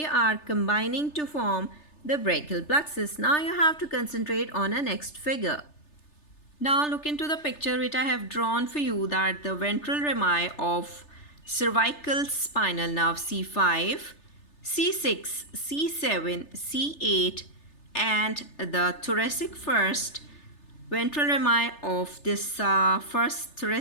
are combining to form the brachial plexus. Now you have to concentrate on a next figure. Now look into the picture which I have drawn for you, that the ventral rami of cervical spinal nerve C5, C6, C7, C8 and the thoracic first ventral rami of this first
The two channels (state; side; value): late; right; 3.3 ms